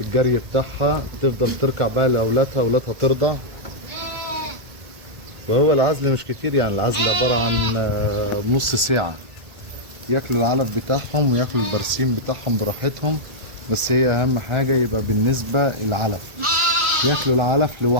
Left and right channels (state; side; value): late; left; 1.8 ms